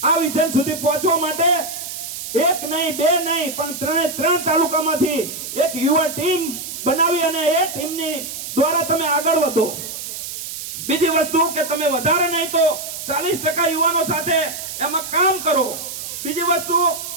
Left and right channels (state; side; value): noise; right; hiss, 8 dB below the sound